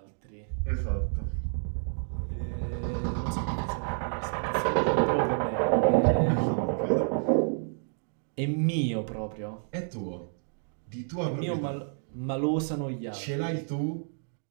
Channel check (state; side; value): silent; left; digital silence